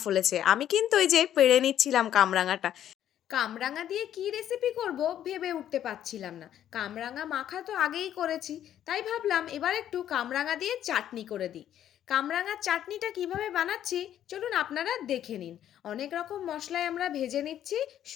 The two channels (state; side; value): quieter; right; 10.9 dB